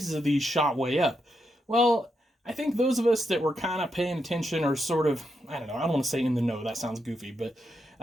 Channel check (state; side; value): normal; both; correlation 0.83